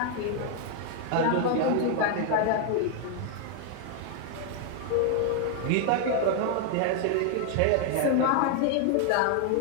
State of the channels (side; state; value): both; different; correlation 0.00